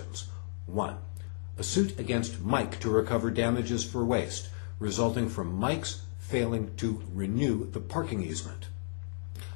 1. A suit against Mike to recover damages for waste, resulting from Mike's failing to renew the parking easement.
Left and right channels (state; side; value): silent; right; digital silence